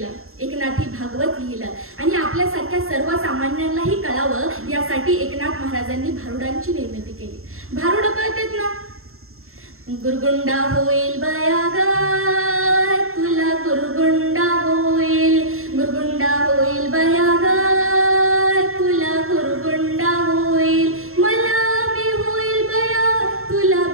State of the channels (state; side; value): late; left; 0.62 ms